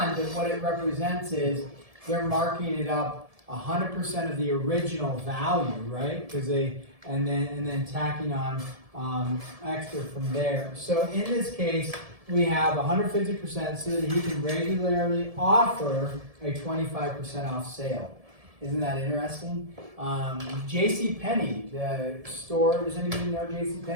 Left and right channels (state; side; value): late; left; 1.7 ms